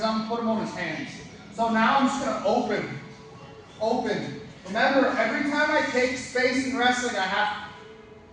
I'm gonna put him on his hands. So now I'm just gonna open. Open. Remember, every time I take space in wrestling,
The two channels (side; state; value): both; identical; correlation 1.00